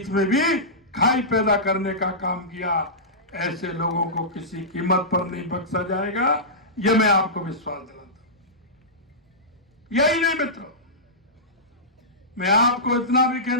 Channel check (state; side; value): normal; both; correlation -0.16